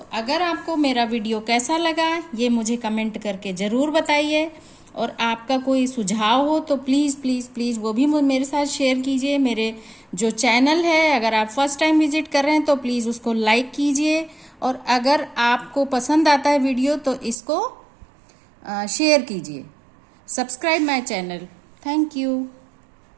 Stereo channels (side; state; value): left; drops out; at 17.4 s